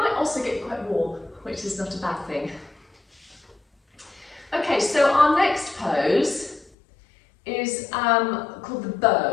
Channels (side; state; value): right; drops out; at 6.7 s